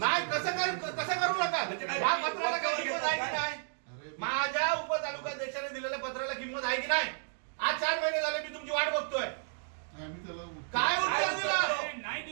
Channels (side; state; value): left; silent; digital silence